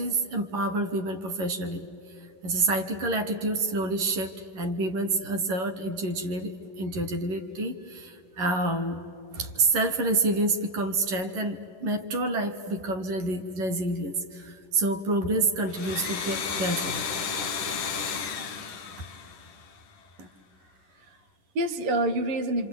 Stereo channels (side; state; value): left; late; 11 ms